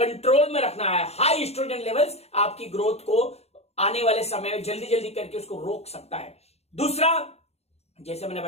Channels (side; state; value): right; late; 0.30 ms